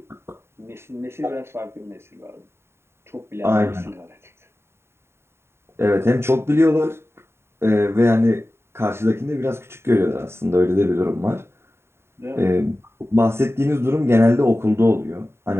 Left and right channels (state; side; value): late; left; 0.12 ms